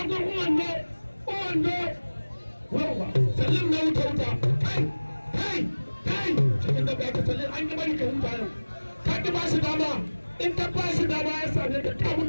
uwando wawa salim na wuta kai cikin da ba ka salim an yi bari ka huta yau ka ki ba shi dama in ka ba shi dama ya same ka ka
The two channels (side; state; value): both; inverted; correlation -1.00